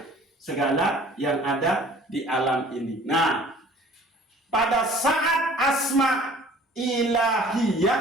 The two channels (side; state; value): both; normal; correlation 0.50